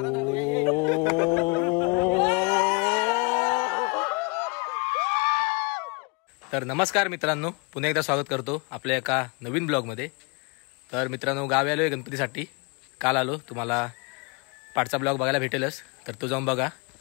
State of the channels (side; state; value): right; quieter; 31.0 dB